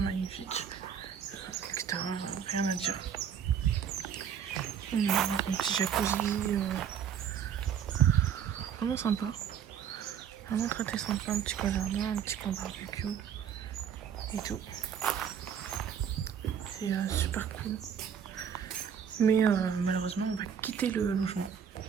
magnifique. L'extérieur, rien à dire. On a un petit jacuzzi, vraiment sympa. Vraiment très sympa, un petit coin jardin, un petit coin barbecue et tout. C'est super cool. Mais malheureusement, on va quitter le logement.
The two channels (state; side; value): quieter; left; 8.1 dB